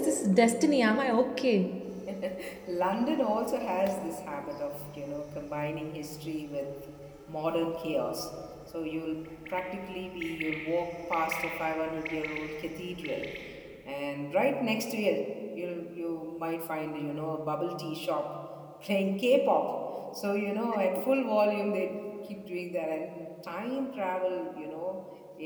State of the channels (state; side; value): identical; both; correlation 1.00